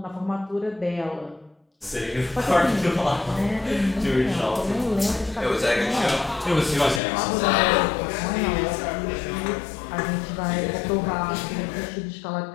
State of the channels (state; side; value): drops out; right; at 7.0 s